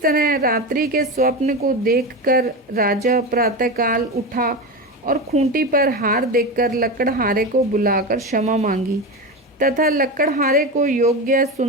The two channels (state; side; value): normal; both; correlation 0.21